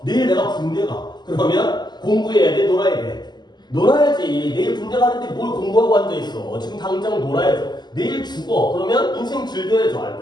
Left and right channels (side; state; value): right; late; 0.21 ms